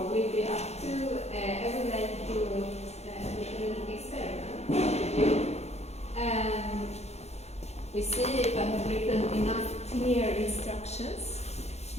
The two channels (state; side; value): late; right; 0.31 ms